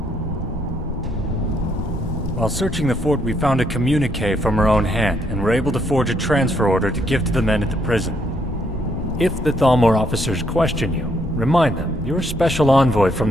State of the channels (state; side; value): normal; both; correlation 0.72